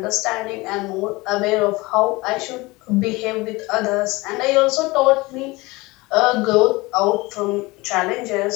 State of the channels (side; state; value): right; quieter; 22.5 dB